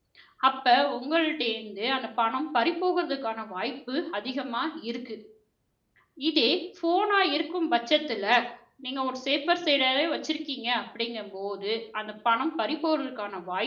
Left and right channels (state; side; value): identical; both; correlation 1.00